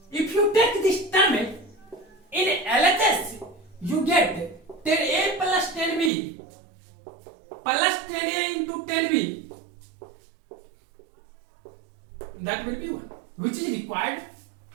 If you take this term in LHS, you get 10a plus 10b plus 10a into 10b. That will be 1, which is required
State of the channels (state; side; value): drops out; left; at 6.1 s